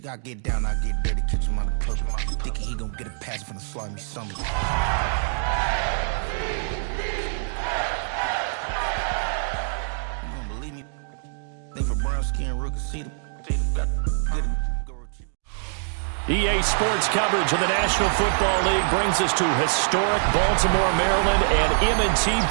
I get down, I get dirty, catch him on the push. Thinking he gon' get a pass from the slimy summer. You don't believe me? They for brown skin rookie, see them. EA Sports coverage of the National Football League brings us to historic Baltimore, Maryland, and M&T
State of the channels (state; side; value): silent; left; digital silence